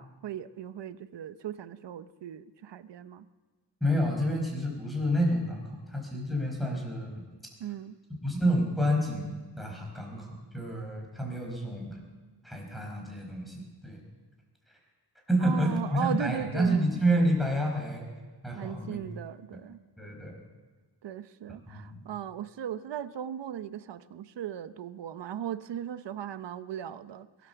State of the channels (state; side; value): normal; both; correlation 0.69